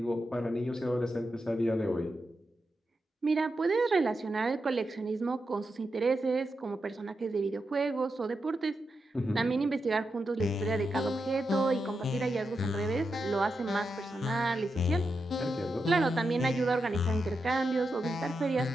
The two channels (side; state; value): both; normal; correlation 0.87